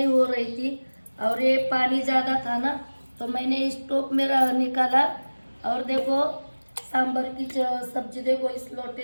हो रही थी और ये पानी ज़्यादा था ना, तो मैंने स्टोव में निकाला। और देखो सांभर की सब्जी देखो इस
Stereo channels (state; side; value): inverted; both; correlation -1.00